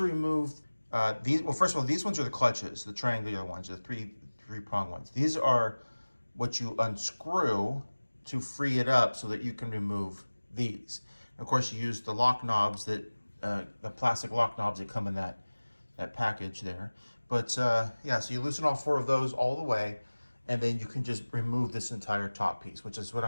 remove these, well, first of all, these ones are the clutches, the triangular ones, the three-prong ones. These are what you unscrew to free it up so that you can remove these. And of course, you use the lock knobs the plastic lock knobs that come in that package there. But yeah, so you loosen all 4 of those all the way, and then you can just remove this entire top piece, which is what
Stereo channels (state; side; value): inverted; both; correlation -1.00